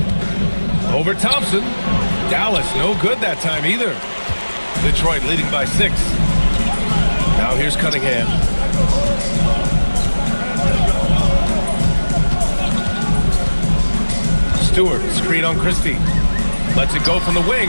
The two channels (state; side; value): inverted; both; correlation -1.00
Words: Over Thompson. Dallas, no good that time either. Detroit leading by 6. Now here's Cunningham. Stewart, screen on Christie. Lets it go from the